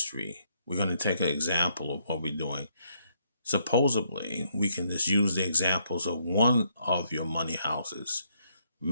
we're going to take an example of what we're doing. Supposedly, we can just use the examples of one of your money houses.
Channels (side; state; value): both; inverted; correlation -0.72